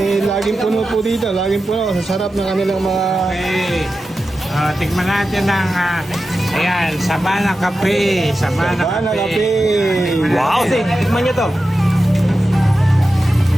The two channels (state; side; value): normal; both; correlation 0.92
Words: Laging puno po dito. Laging puno. Sa sarap ng kanilang mga... Okay. Tikman natin ng ayan, Sabana Cafe. Sabana Cafe. Wow, tikman nyo to.